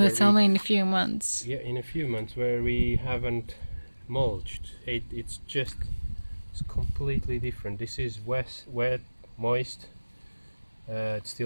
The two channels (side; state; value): both; inverted; correlation -1.00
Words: it's only in a few months. Yeah, in a few months where we haven't mulched. It's completely different. This is wet, moist. It's